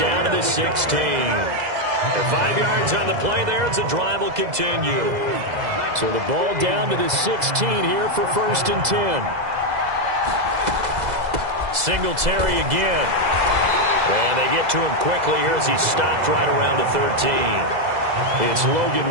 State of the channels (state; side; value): late; left; 2.0 ms